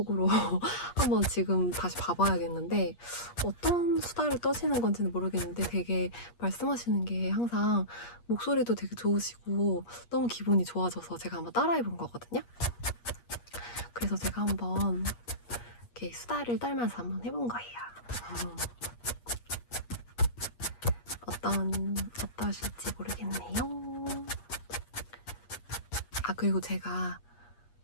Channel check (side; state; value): right; late; 8.4 ms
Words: 한번 지금 다시 봐봐야겠는데 어떤 수다를 떠시는 건지는 모르겠는데 되게 말씀하시는 게 항상 목소리도 되게 좋으시고 너무 기분이 좋아져서 제가 한번 따라해본 거거든요. 그래서 제가 한번 이렇게 수다를 떨면서 한번 해본 거예요. 어떠실지 모르겠네요. 그리고 제가